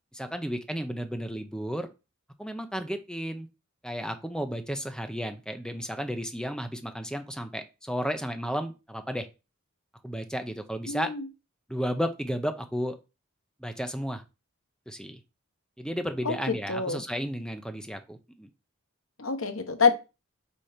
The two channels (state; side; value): normal; both; correlation 0.37